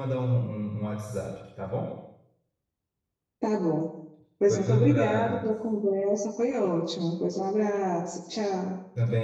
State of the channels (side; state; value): both; identical; correlation 1.00